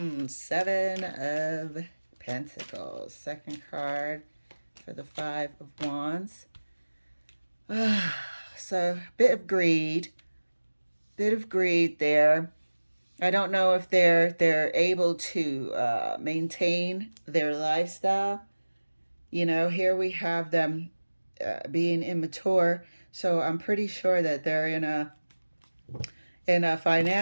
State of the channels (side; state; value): both; inverted; correlation -1.00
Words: of Pentacles. Second card for the 5 of Wands. So, bit of greed there. I don't know if they're able to maintain their lifestyle. Here we have them being immature, so I'm pretty sure that they're in a